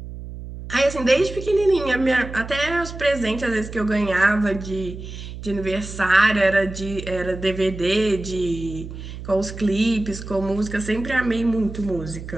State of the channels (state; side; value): noise; right; hum, 11 dB below the sound